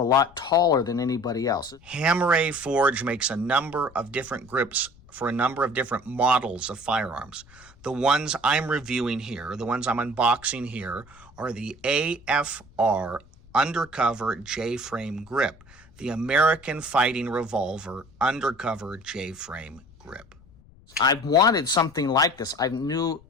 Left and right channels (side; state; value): left; noise; rumble, 25 dB below the sound